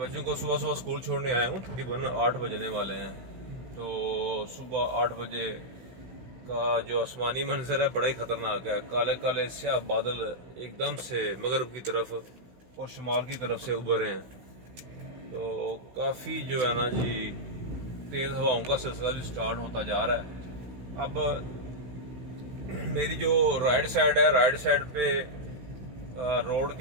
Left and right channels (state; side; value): late; left; 16 ms